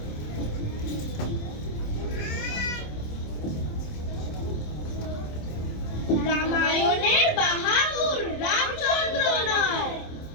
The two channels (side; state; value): right; late; 27 ms